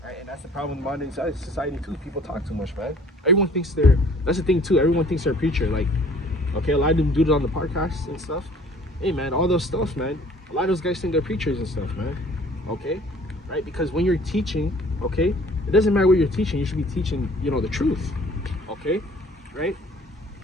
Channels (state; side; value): normal; both; correlation 0.53